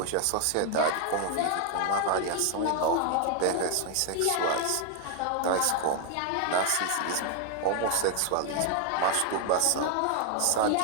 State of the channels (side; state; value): both; different; correlation 0.00